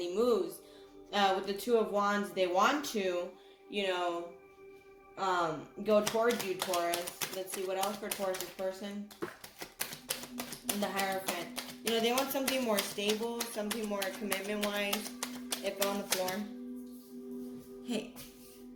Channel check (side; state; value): both; identical; correlation 1.00